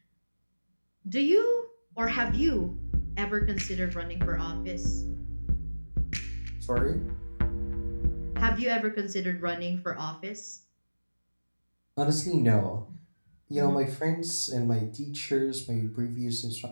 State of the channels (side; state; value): both; inverted; correlation -1.00